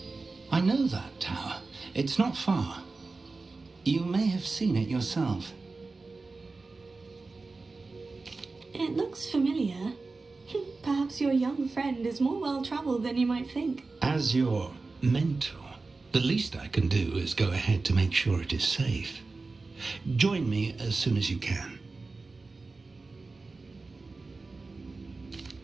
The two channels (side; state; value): left; quieter; 3.8 dB